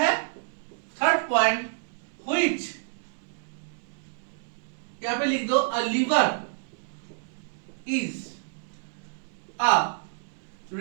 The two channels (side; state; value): left; silent; 59 dB below the other